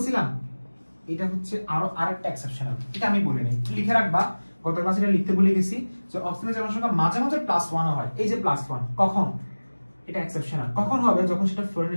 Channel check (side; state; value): both; inverted; correlation -1.00